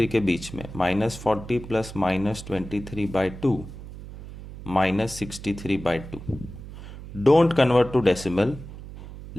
के बीच में, -40 plus -23 by 2 -63 by 2. Don't convert to decimal,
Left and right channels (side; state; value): right; noise; hum, 13 dB below the sound